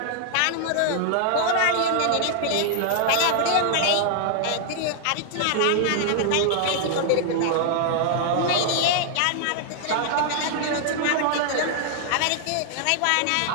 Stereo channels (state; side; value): different; both; correlation 0.00